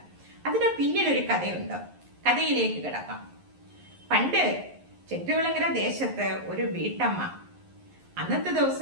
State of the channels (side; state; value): left; late; 11 ms